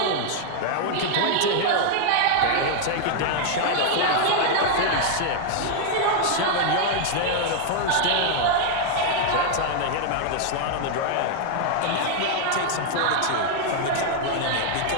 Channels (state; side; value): different; both; correlation 0.00